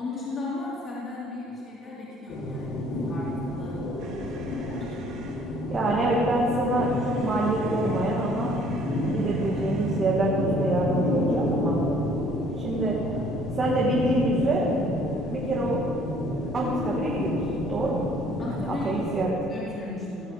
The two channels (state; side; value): normal; both; correlation 0.58